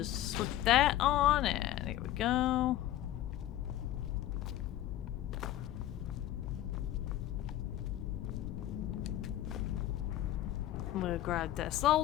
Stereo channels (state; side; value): quieter; right; 13.5 dB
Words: slip that on, and here we go. We'll grab that